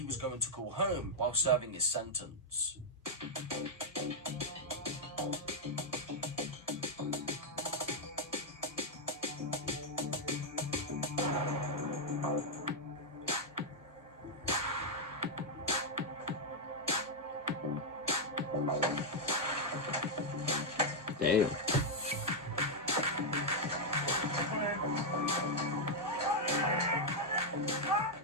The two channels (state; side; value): normal; both; correlation -0.03